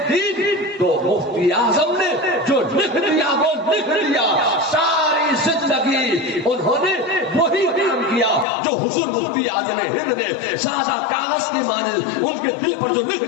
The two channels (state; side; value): drops out; right; at 8.5 s